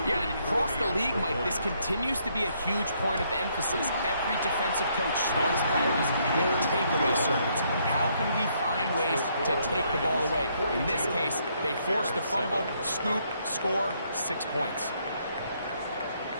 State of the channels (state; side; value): inverted; both; correlation -0.71